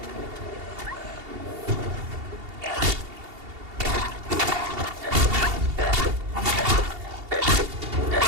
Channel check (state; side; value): late; left; 2.8 ms